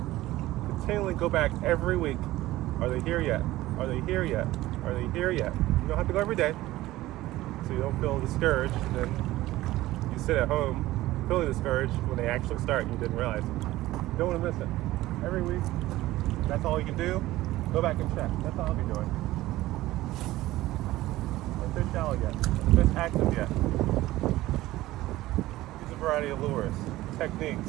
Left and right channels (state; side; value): quieter; left; 16.8 dB